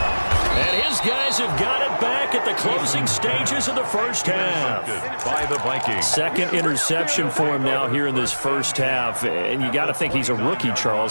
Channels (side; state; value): both; inverted; correlation -1.00